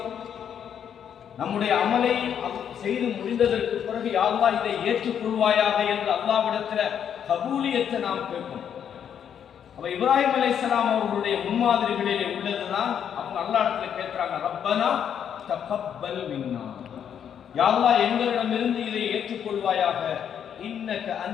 நம்முடைய அமலை செய்து முடிந்ததற்கு பிறகு யா அல்லாஹ் இதை ஏற்றுக்கொள்வாயாக என்று அல்லாஹ்விடத்தில் கபூலியத்தை நாம் கேட்கணும். அப்ப இப்ராஹிம் அலைஹிஸ்ஸலாம் அவர்களுடைய முன்மாதிரிகளிலே உள்ளதுதான். அவங்க அல்லாஹ்விடத்துல கேட்கிறாங்க, ரப்பனா தகப்பல் மின்னா, யா அல்லாஹ் எங்களிடமிருந்து இதை ஏற்றுக்கொள்வாயாக. இன்னக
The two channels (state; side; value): quieter; right; 8.6 dB